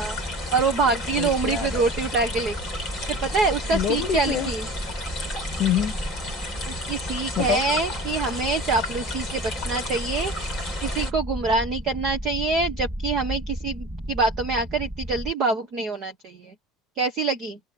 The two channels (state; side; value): normal; both; correlation 0.35